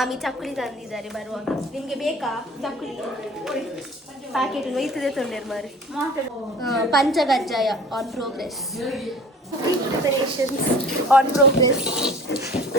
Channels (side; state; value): both; normal; correlation 0.45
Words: ಚಕ್ಕುಲಿ ತಂದಿದ್ದಾರೆ ಬರುವಾಗ. ನಿಮಗೆ ಬೇಕಾ ಚಕ್ಕುಲಿ? ಪ್ಯಾಕೆಟ್ ಒಯ್ತದೆ ತೊಂದರೆ ಮಾರಿ. ಪಂಚಗಜ್ಜಾಯ on progress. Preparations on progress.